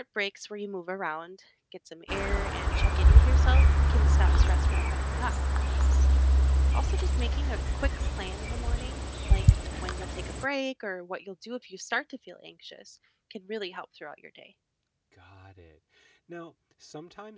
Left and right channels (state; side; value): identical; both; correlation 1.00